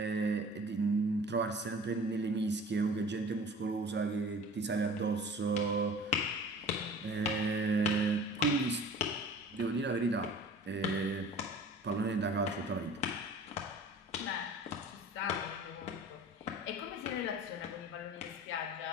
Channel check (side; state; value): both; normal; correlation 0.43